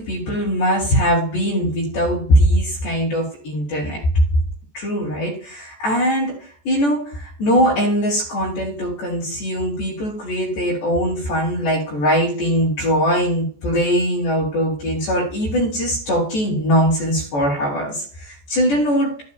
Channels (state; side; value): late; right; 14 ms